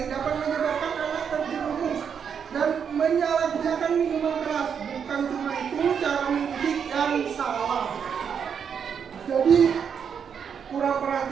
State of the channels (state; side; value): quieter; left; 7.2 dB